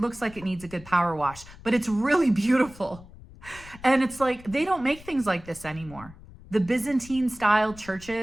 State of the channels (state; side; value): noise; left; rumble, 19 dB below the sound